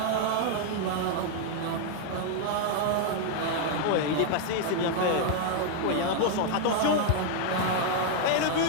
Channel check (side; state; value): both; different; correlation 0.00